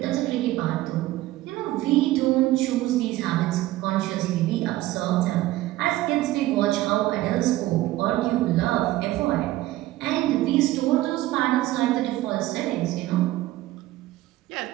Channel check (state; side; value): quieter; left; 16.4 dB